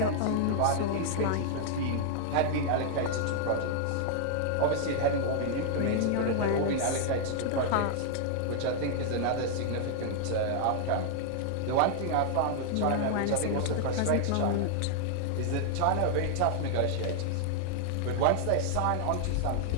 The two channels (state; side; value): different; both; correlation 0.00